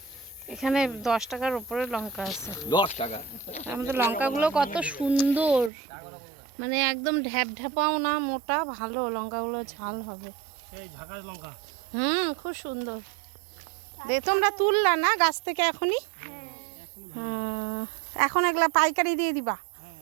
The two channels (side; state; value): left; drops out; at 5.7 s